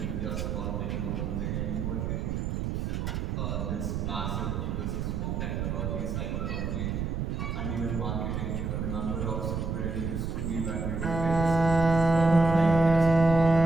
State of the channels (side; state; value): right; noise; rumble, 2 dB below the sound